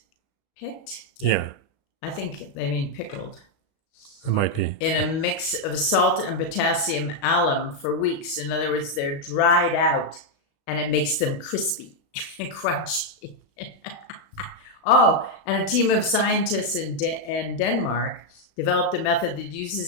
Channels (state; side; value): late; right; 36 ms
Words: Yeah. I think they mean pickled. It might be. In a mix of salt and potassium alum for weeks. In other words, they're dried out and it makes them crispy and crunchy. Oh, and a team of scientists in Denmark developed a method that